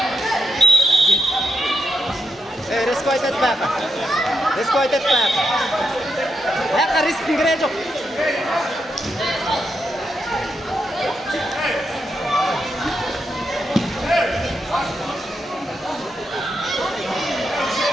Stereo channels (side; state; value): both; normal; correlation 0.84